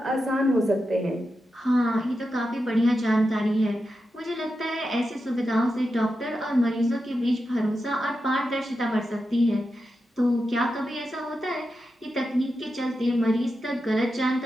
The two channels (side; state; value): both; normal; correlation 0.89